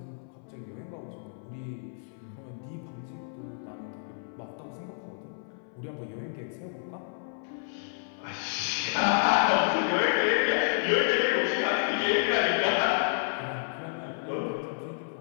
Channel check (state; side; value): silent; right; 57 dB below the other